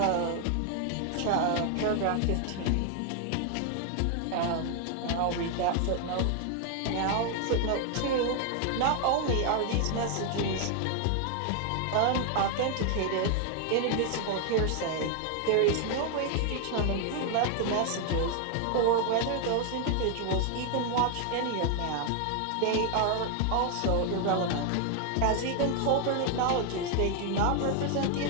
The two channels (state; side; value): different; both; correlation 0.00